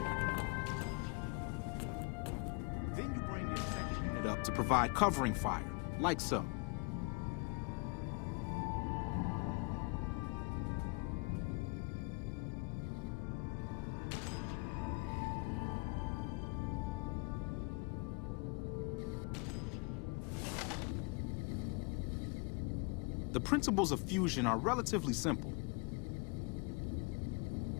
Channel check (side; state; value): right; quieter; 30.5 dB